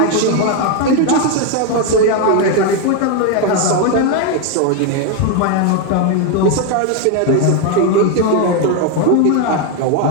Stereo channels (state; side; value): different; both; correlation 0.01